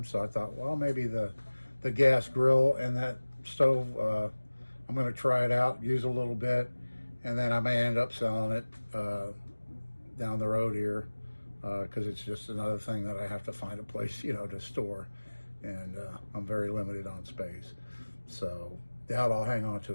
So I thought, well, maybe the gas grill and that stove, I'm going to try it out, use a little bit, and then I may end up selling it down the road here because it's just another thing that I have to find a place, to store. And I'm very limited on space. So doubt I'll hang on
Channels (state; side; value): inverted; both; correlation -1.00